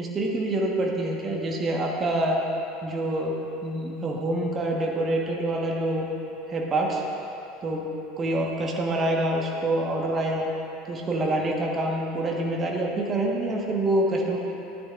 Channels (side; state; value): both; normal; correlation 0.55